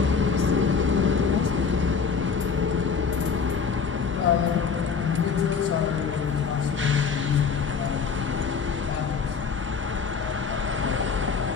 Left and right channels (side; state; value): right; quieter; 5.8 dB